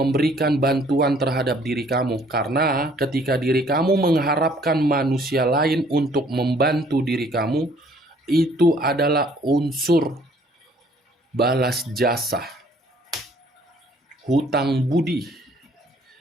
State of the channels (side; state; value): both; normal; correlation 0.60